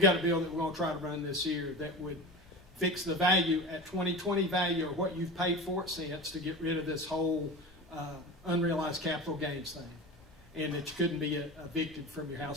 a bill that we're going to try to run this year that would fix the value at 2020 value or what you've paid for it since to get rid of this whole unrealized capital gains thing, and that you couldn't be evicted from your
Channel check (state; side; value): normal; both; correlation 0.31